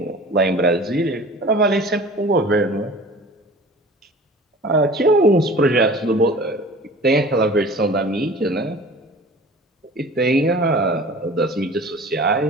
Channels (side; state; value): both; normal; correlation 0.43